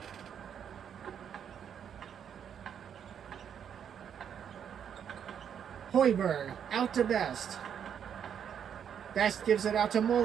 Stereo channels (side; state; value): left; quieter; 8.4 dB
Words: Hoiberg out to Best. Best gives it out to